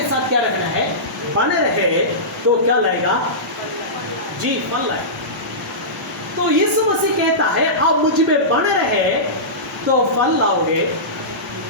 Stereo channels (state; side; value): normal; both; correlation -0.18